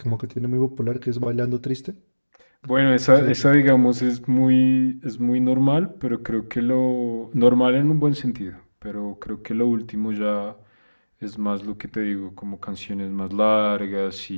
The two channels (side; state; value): both; inverted; correlation -1.00